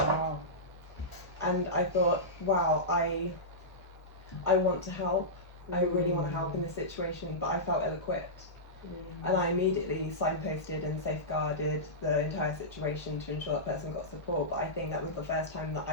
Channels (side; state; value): both; normal; correlation -0.15